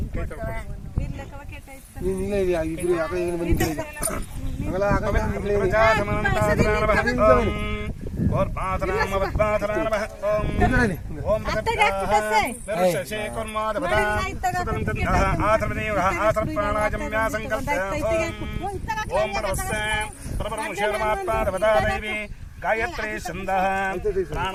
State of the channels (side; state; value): both; identical; correlation 1.00